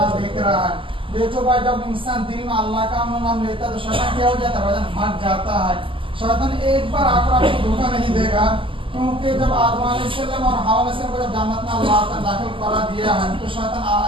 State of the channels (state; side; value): late; left; 0.25 ms